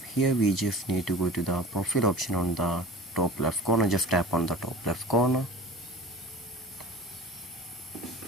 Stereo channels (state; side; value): normal; both; correlation 0.39